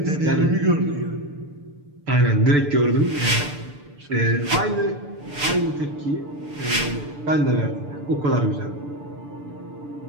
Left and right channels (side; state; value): left; late; 6.8 ms